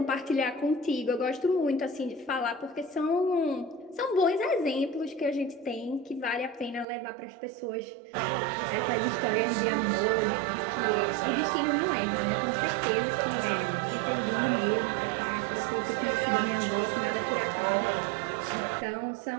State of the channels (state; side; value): drops out; left; at 6.9 s